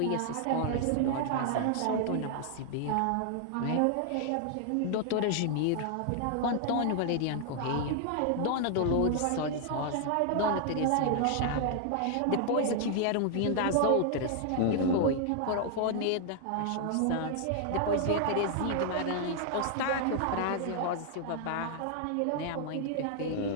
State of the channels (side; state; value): both; different; correlation 0.00